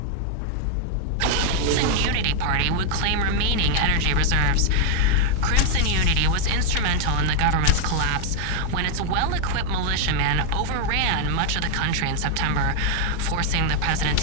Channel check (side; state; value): both; different; correlation 0.00